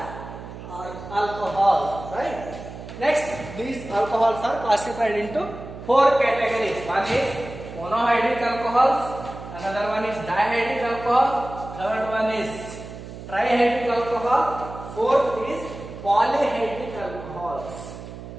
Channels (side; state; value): right; noise; hum, 12 dB below the sound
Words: alcohols. Right? Next, these alcohols are classified into 4 categories. One is monohydric alcohols, another one is dihydric alcohol, third one is trihydric alcohol, fourth is polyhydric alcohols.